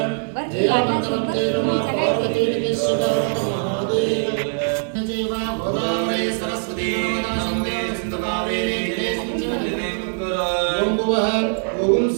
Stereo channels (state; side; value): silent; left; digital silence